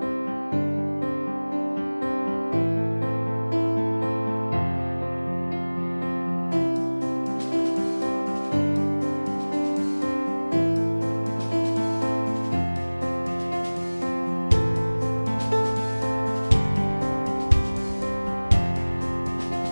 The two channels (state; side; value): inverted; both; correlation -1.00